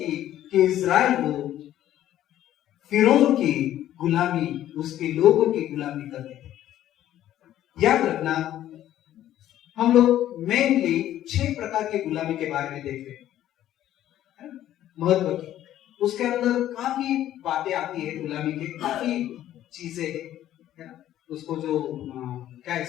कि इस्राएल लोग फिरौन की गुलामी, उसके लोगों की गुलामी करते थे। याद रखना, हम लोग मेनली 6 प्रकार की गुलामी के बारे में देख रहे हैं, महत्व की। उसके अंदर काफी बातें आती है गुलामी के, काफी चीजें है ना। उसको जो क्या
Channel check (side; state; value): right; quieter; 12.5 dB